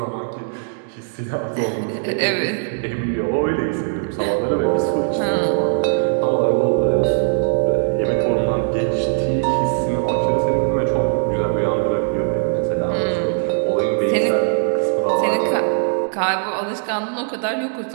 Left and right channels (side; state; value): left; silent; digital silence